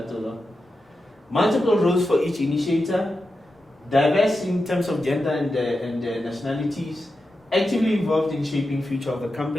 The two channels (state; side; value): normal; both; correlation 0.90